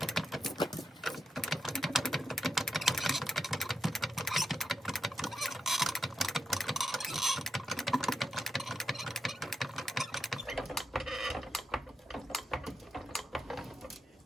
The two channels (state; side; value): normal; both; correlation 0.85